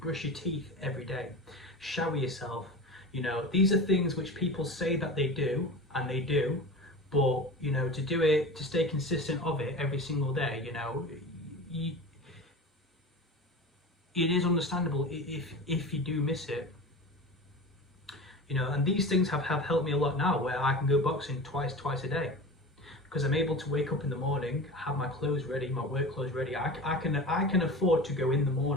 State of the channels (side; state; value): both; normal; correlation 0.32